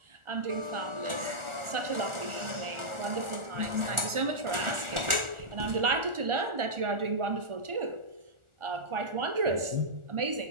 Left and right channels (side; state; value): left; late; 1.4 ms